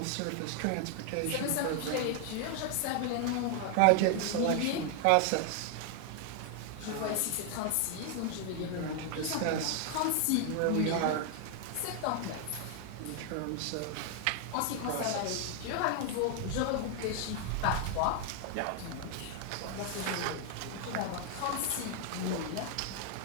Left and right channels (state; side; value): different; both; correlation 0.00